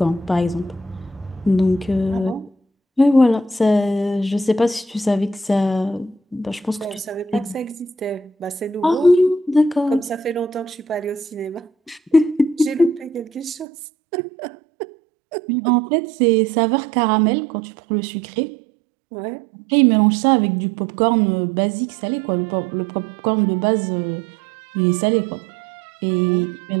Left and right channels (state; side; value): drops out; left; at 13.7 s